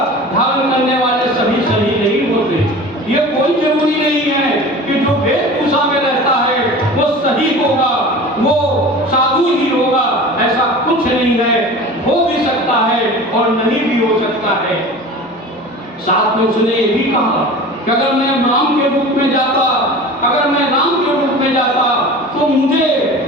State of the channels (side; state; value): both; normal; correlation 0.37